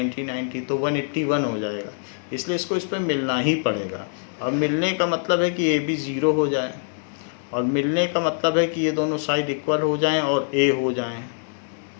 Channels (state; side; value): silent; right; digital silence